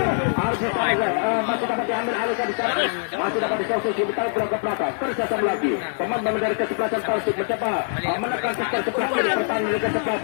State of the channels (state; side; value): silent; right; 63 dB below the other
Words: Arif masih dapat diambil alih ke sana masih dapat disosisi ditarik bola ke belakang kerjasama lagi pemain dari kesebelasan Persib mencoba menekan sektor sebelah kiri pertahanan dari